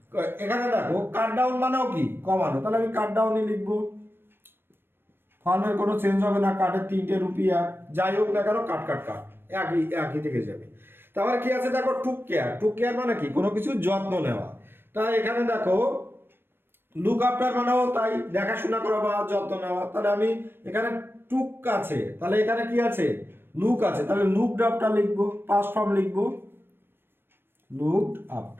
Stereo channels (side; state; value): left; late; 0.10 ms